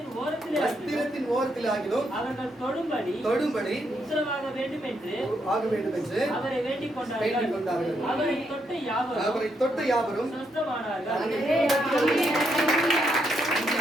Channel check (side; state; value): both; normal; correlation 0.78